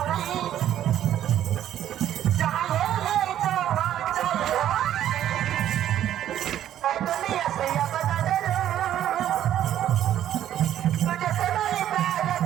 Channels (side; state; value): left; quieter; 11.4 dB